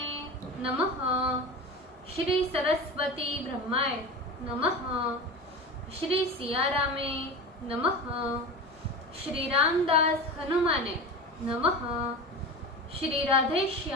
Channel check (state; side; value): normal; both; correlation 0.28